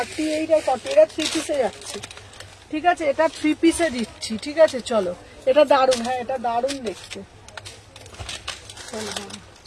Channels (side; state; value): both; identical; correlation 1.00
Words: আর 40 এটা 3 পিসে যাচ্ছে। ঠিক আছে এটা 3 পিসে দিচ্ছি। ঠিক আছে চলো এটা দারুণ, হ্যাঁ এটা দারুণ দেখতে।